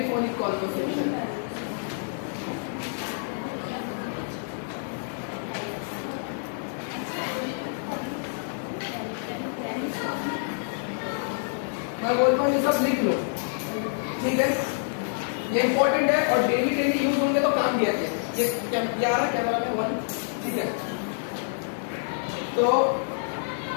कॉन्वर्सेशन। मैं बोलता हूँ ये सब लिख लो, ठीक है? ये इंपॉर्टेंट है और डेली यूज होंगे तो काम भी आते हैं। ये क्या आ रहा है कैमरा में? 1, ठीक है। तो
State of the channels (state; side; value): silent; right; 60 dB below the other